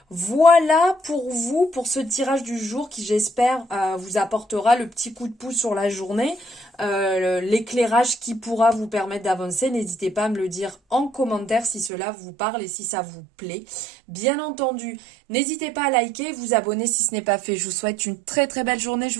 Voilà pour vous, pour ce tirage du jour qui j'espère vous apportera le petit coup de pouce sur la journée, l'éclairage qui pourra vous permettre d'avancer. N'hésitez pas à me le dire en commentaire si cela vous parle et si ça vous plaît. Bien entendu, n'hésitez pas à liker, vous abonner si ce n'est pas fait. Je vous souhaite une très très belle journée, je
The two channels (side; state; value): left; drops out; at 11.9 s